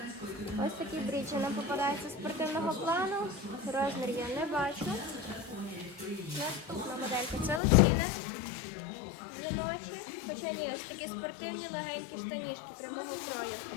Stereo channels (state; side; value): drops out; right; at 7.6 s